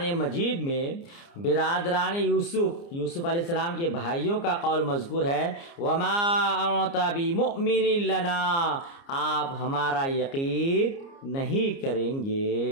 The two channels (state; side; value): late; right; 29 ms